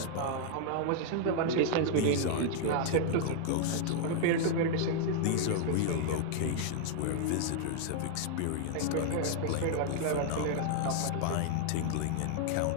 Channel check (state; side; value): different; both; correlation 0.00